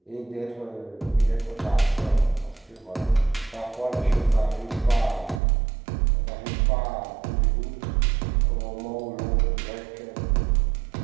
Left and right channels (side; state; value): left; drops out; at 5.4 s